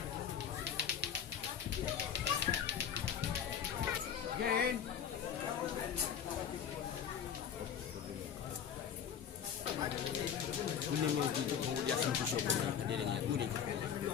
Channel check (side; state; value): right; quieter; 8.3 dB